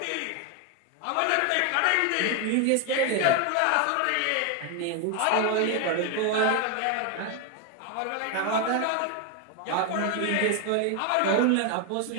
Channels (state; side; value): different; both; correlation 0.01